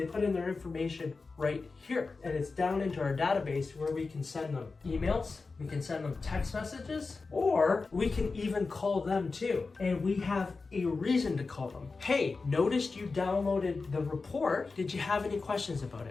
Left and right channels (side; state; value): right; quieter; 4.1 dB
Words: put in their information right here. And it's down into our database where we can send them emails, we can send them text messages, or we can even call them too. And we have a reason to call them. Hey, noticed you downloaded the report. Did you have any questions about